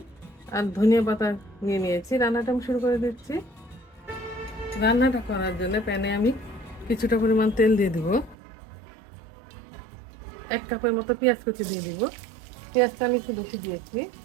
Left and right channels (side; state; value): left; drops out; at 8.3 s